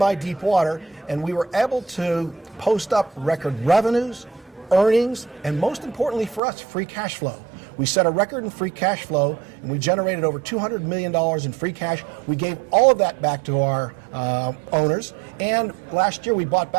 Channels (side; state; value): left; drops out; at 6.4 s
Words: deep water, and we were able to post up record revenues, earnings, and most importantly for us, free cash flow. We set a record in free cash flow, and we generated over $200 million in free cash. We gave all of that back to our owners, and last year we bought